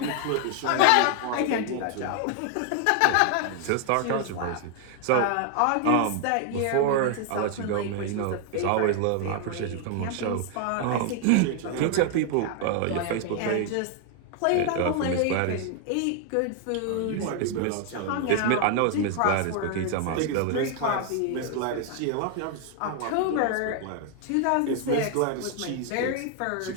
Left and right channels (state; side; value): different; both; correlation 0.00